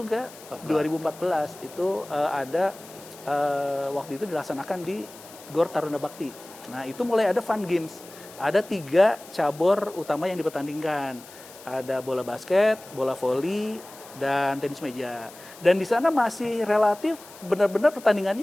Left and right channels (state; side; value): noise; left; hiss, 19 dB below the sound